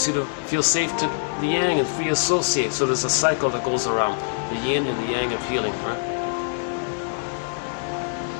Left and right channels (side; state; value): right; silent; digital silence